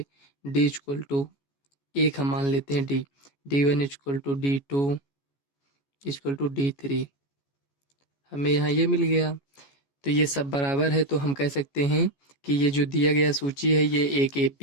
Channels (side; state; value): right; late; 14 ms